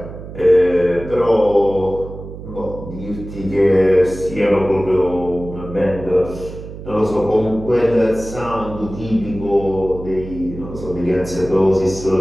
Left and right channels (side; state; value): right; noise; hum, 12 dB below the sound